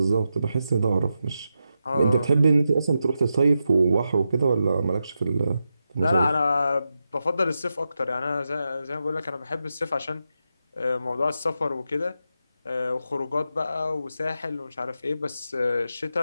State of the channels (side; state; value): both; inverted; correlation -0.88